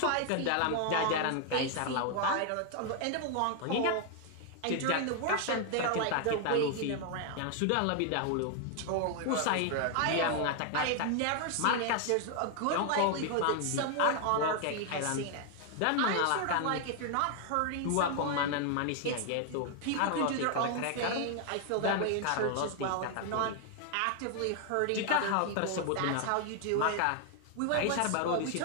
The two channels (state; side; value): different; both; correlation 0.00